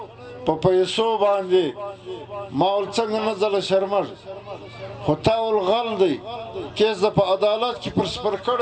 په پیسو باندې ما ول څنګه نه ځله شرمږي خو تا ول غل دی کیس د په عدالت کې پر سپر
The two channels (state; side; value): identical; both; correlation 1.00